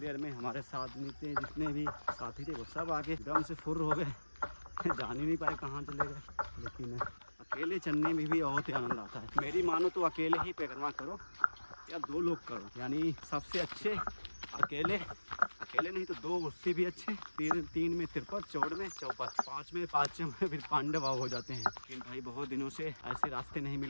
में हमारे साथ में जितने भी साथी थे वो सब आके एकदम से फुर्र हो गए, जान ही नहीं पाए कहाँ चले गए। लेकिन अकेले चलने में भी बहुत ही आनंद आता है। मेरी मानो तो अकेले ही परिक्रमा करो या 2 लोग करो, यानी सबसे अच्छे अकेले नहीं तो 2 उससे भी अच्छे, 3 में तिरपत, 4 में चौपट, 5 में फिर पांडव हो जाते हैं। लेकिन भाई बहुत दिनों से ऐसे रास्ते नहीं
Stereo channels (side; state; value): both; inverted; correlation -1.00